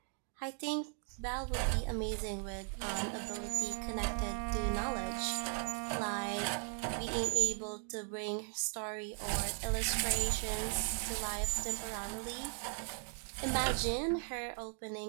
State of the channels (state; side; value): silent; left; 53 dB below the other